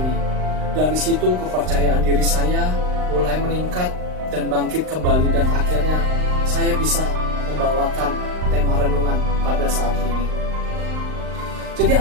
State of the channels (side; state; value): left; late; 39 ms